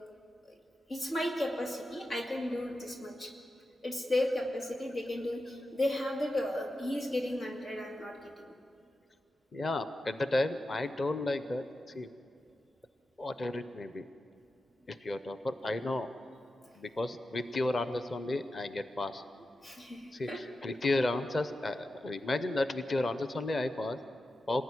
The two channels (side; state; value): both; normal; correlation 0.91